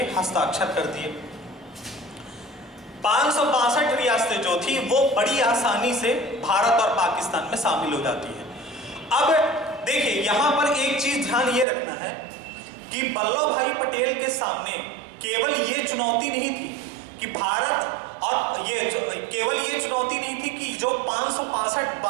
हस्ताक्षर कर दिए। 562 रियासतें जो थी वो बड़ी आसानी से भारत और पाकिस्तान में शामिल हो जाती है। अब देखिए यहां पर एक चीज ध्यान ये रखना है कि वल्लभ भाई पटेल के सामने केवल ये चुनौती नहीं थी कि भारत, और केवल ये चुनौती नहीं थी कि जो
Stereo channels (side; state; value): left; drops out; at 11.7 s